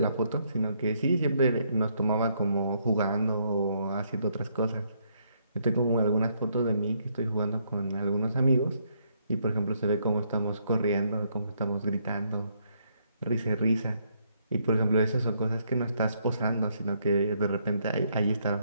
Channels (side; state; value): both; inverted; correlation -0.72